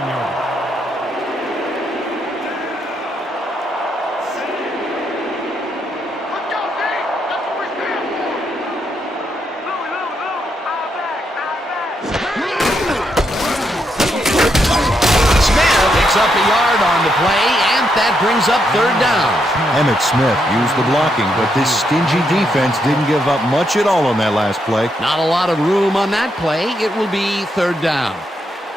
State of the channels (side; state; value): both; normal; correlation 0.79